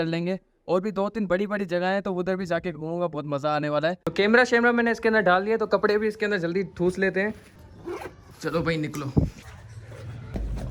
लेंगे और भी 2-3 बड़ी बड़ी जगह है, तो उधर भी जाके घूमूंगा, बहुत मज़ा आने वाला है। तो कैमरा शैमरा मैंने इसके अंदर डाल दिया, तो कपड़े भी इसके अंदर जल्दी ठूस लेते हैं। चलो भाई निकलो।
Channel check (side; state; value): both; identical; correlation 1.00